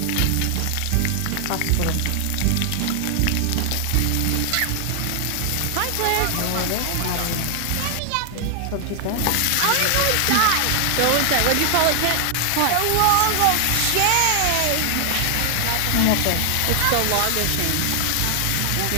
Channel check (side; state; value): both; different; correlation 0.00